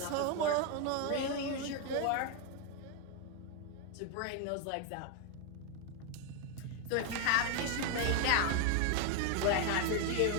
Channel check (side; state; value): both; different; correlation 0.01